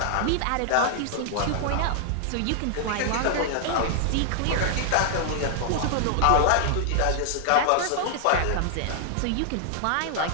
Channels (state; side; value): different; both; correlation 0.00